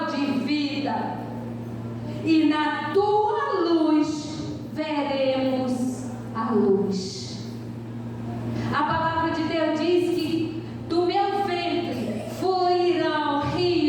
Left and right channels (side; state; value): both; identical; correlation 1.00